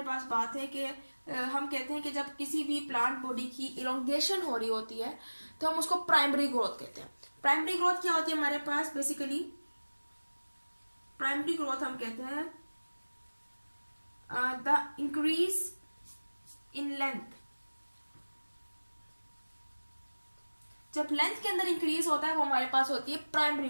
पास बात है कि हम कहते हैं कि जब किसी भी प्लांट बॉडी की इलोंगेशन हो रही होती है तो हम उसको प्राइमरी ग्रोथ कहते हैं। प्राइमरी ग्रोथ क्या होती है हमारे पास, बेसिकली प्राइमरी ग्रोथ हम कहते हैं द इंक्रीज इन लेंथ। जब लेंथ के अंदर इंक्रीज होता है वो हमारे पास होती है प्राइमरी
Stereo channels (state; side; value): inverted; both; correlation -1.00